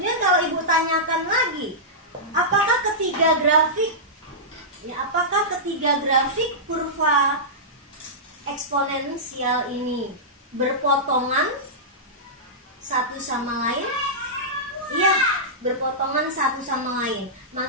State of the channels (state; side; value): normal; both; correlation -0.14